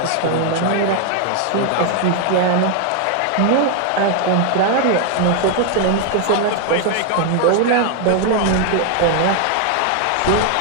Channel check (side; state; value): both; different; correlation 0.01